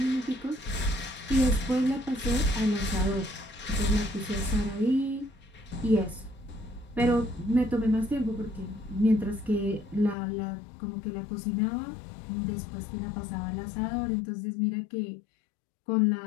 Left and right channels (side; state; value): right; drops out; at 10.2 s